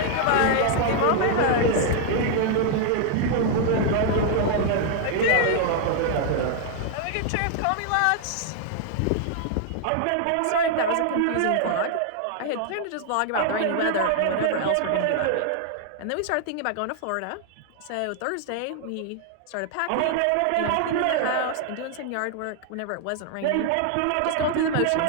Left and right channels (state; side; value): different; both; correlation 0.00